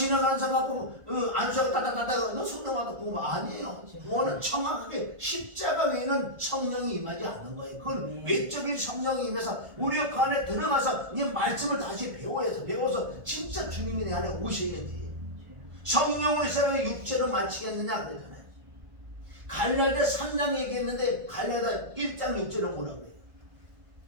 사람 갖고 안수하고 따따따따 너 성령 받아 구원 아니에요. 구원은 정확하게 십자가 외에는 성령이 임하지 않는 거예요. 그건 외적인 성령이 임해서 우리 그 안에 들어가서 이 말씀을 다시 배워서 진짜 주님이 내 안에 오셔야지. 성령으로 시작해 육체로 마치겠느냐 그러잖아요. 갈라디아 3장 얘기했는데 갈라디아 1장 6절은 뭐라고 그래요?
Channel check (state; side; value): late; left; 1.5 ms